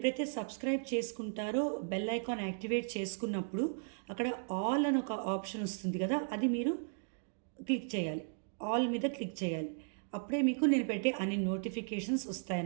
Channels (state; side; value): silent; left; digital silence